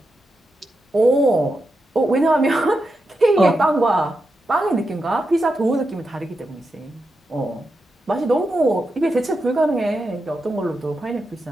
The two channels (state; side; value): normal; both; correlation 0.87